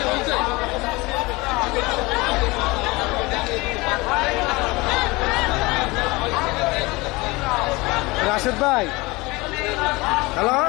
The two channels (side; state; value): right; quieter; 23.2 dB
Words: রাশেদ ভাই হ্যালো,